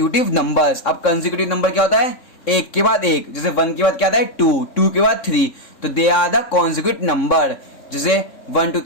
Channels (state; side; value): late; right; 3.6 ms